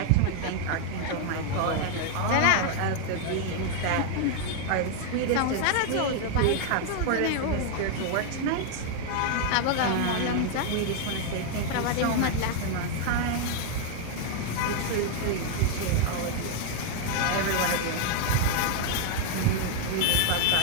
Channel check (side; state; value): both; different; correlation 0.00